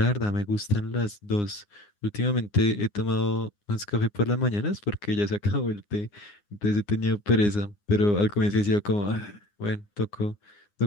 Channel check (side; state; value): right; late; 9.7 ms